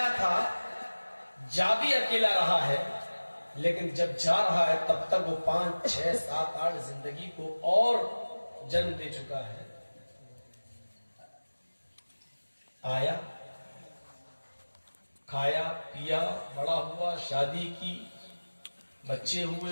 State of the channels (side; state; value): both; inverted; correlation -1.00